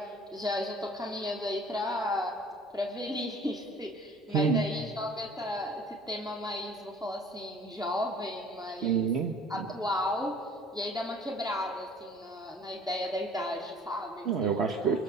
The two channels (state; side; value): normal; both; correlation 0.50